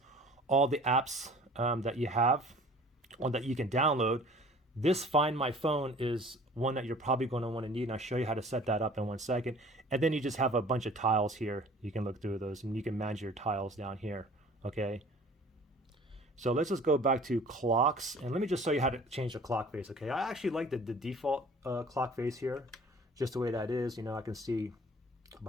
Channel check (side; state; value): both; normal; correlation 0.48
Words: all the apps that you have, or that you can download. This Find My Phone is one that you're probably going to want to need, and I'll show you how to set that up in 1 second. And then you just have a bunch of tiles here. You can look through those, and you can manage your tiles down here, okay? So let's just go back to clocks, and let me just show you how to change the clock face, okay? I actually like the default clock face here, just the way that is. You know, I can see